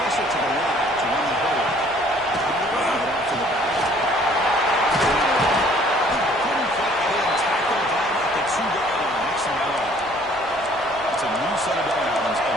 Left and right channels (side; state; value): left; noise; rumble, 23 dB below the sound